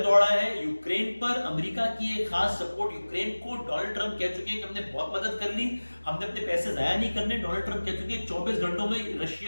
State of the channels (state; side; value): inverted; both; correlation -1.00